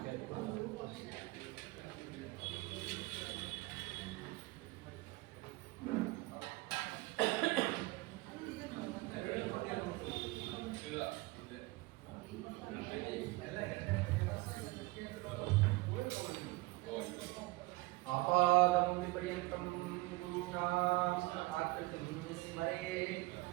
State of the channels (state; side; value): quieter; left; 21.7 dB